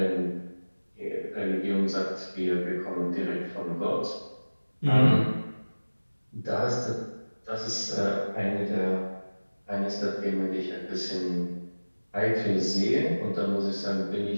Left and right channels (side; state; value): both; inverted; correlation -1.00